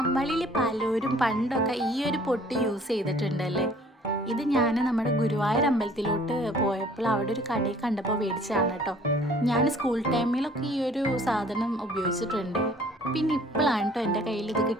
പലരും പണ്ടൊക്കെ ഈ ഒരു പൊട്ട് യൂസ് ചെയ്തിട്ടുണ്ടല്ലേ. ഇത് ഞാൻ നമ്മുടെ ഗുരുവായൂർ അമ്പലത്തിലോട്ട് പോയപ്പോൾ അവിടെ ഒരു കടയിൽ കണ്ടപ്പോൾ മേടിച്ചതാണ് കേട്ടോ. ഞാൻ സ്കൂൾ ടൈമിലൊക്കെ ഈ ഒരു സാധനം ഉപയോഗിച്ചിട്ടുണ്ട്. പിന്നെ ഇപ്പോഴാണ് കേട്ടോ എൻ്റെ കയ്യിൽ ഇത്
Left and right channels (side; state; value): both; normal; correlation 0.55